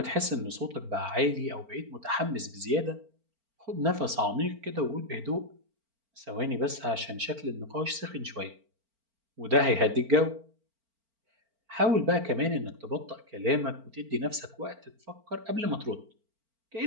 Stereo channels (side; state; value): left; late; 4.4 ms